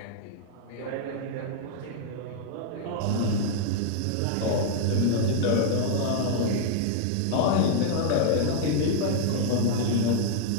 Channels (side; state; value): both; different; correlation -0.01